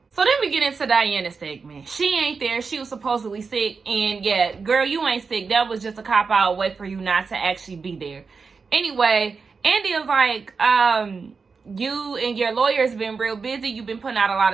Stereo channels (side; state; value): left; quieter; 4.9 dB